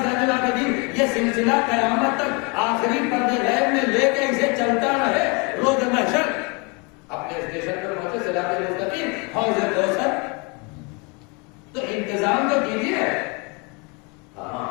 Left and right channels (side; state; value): right; quieter; 31.0 dB